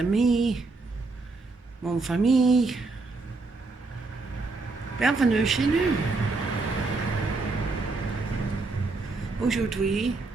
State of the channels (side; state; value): left; quieter; 3.7 dB